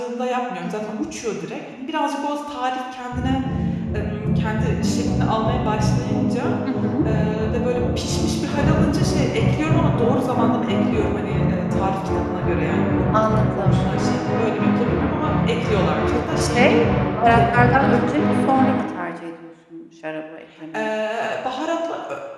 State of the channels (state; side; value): identical; both; correlation 1.00